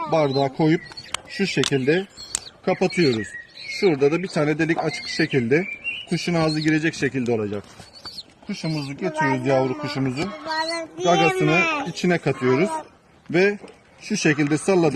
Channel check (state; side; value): identical; both; correlation 1.00